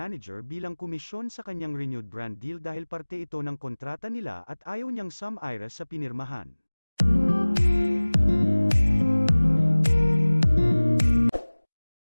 bilang komisyon sa kanyang renewed brand deal dahil parte ito ng kontrata nila at ayaw niyang sum-ira sa pinirmahan.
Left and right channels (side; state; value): both; inverted; correlation -1.00